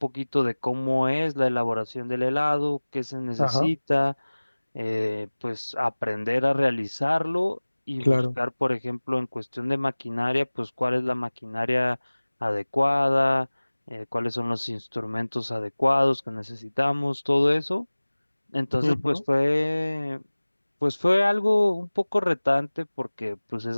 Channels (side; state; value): both; inverted; correlation -1.00